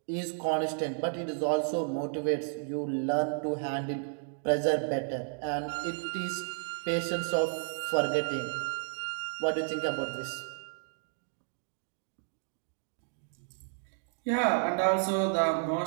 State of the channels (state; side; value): silent; left; digital silence